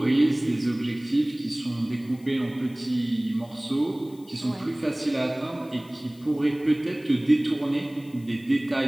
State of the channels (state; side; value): noise; left; hiss, 26 dB below the sound